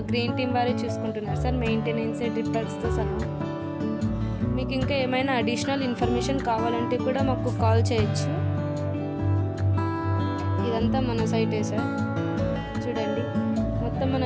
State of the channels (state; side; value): identical; both; correlation 1.00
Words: గ్రీన్ టీమ్ వారే చూసుకుంటున్నారు సార్. మెయింటెనెన్స్, డ్రిప్పర్స్తో సహా. మీకు ఇంకా ఏమైనా అడిషనల్ ఇన్ఫర్మేషన్ కావాలంటే కూడా మాకు కాల్ చేయొచ్చు. ఇదంతా మన సైటే సార్. చూడండి, మొత్తం మన